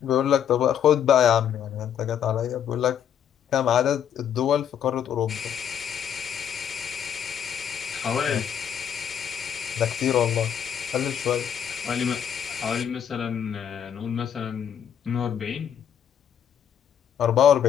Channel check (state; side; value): quieter; right; 8.9 dB